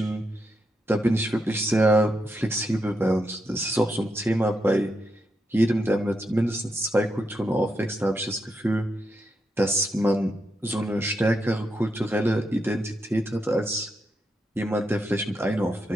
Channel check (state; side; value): normal; both; correlation 0.83